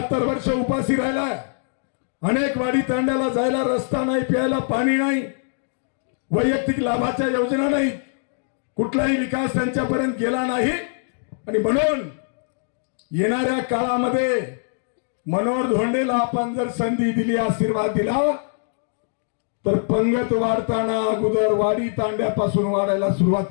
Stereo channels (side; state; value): right; silent; digital silence